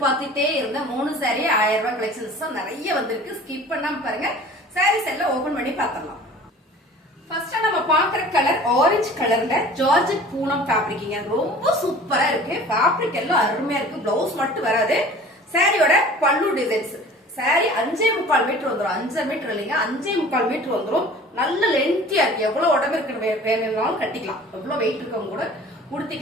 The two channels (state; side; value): normal; both; correlation 0.45